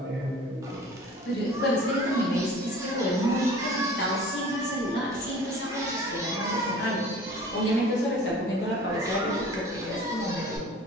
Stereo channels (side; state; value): both; normal; correlation 0.45